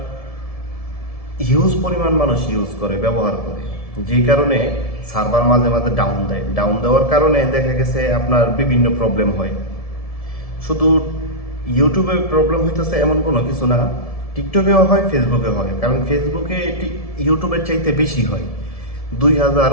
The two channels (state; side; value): late; right; 1.7 ms